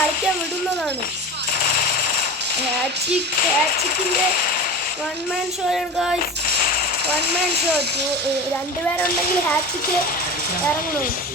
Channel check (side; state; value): both; normal; correlation 0.31